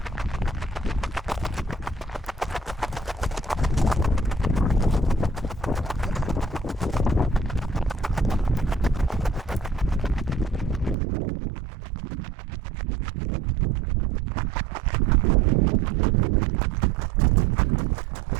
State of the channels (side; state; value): left; drops out; at 11.0 s